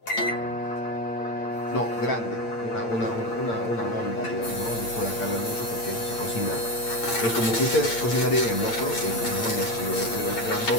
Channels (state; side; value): late; right; 8.7 ms